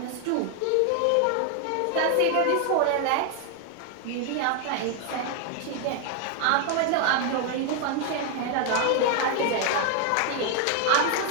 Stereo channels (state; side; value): different; both; correlation 0.01